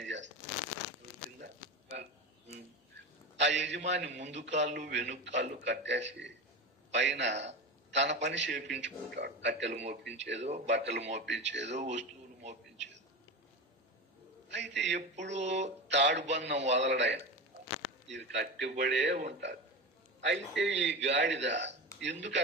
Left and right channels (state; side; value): normal; both; correlation 0.23